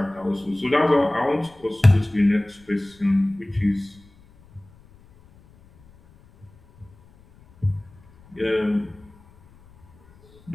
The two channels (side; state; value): left; noise; rumble, 27 dB below the sound